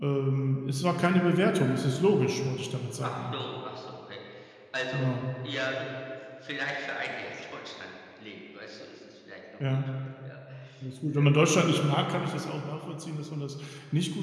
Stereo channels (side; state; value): both; identical; correlation 1.00